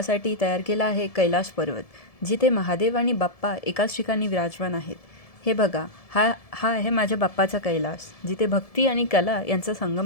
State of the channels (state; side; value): late; right; 1.7 ms